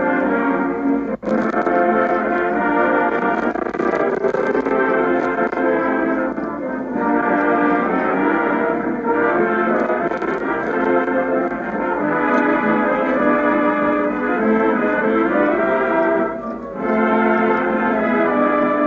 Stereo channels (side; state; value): both; identical; correlation 1.00